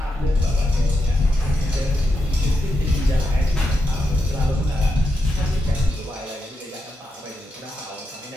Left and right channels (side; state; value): both; normal; correlation 0.85